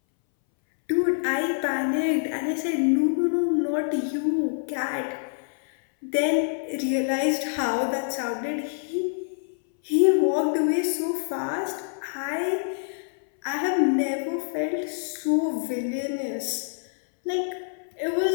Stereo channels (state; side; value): silent; right; 61 dB below the other